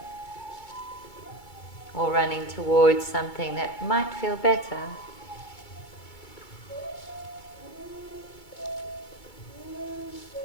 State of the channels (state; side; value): late; right; 2.2 ms